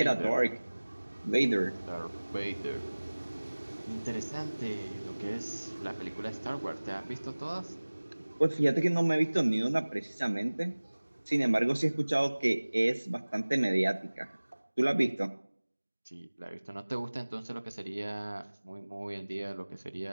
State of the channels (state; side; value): inverted; both; correlation -1.00